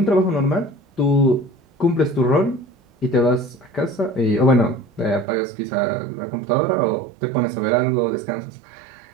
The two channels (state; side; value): drops out; left; at 5.2 s